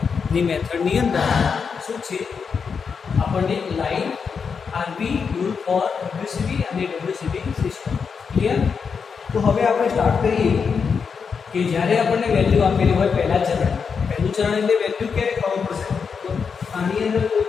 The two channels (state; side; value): quieter; right; 5.9 dB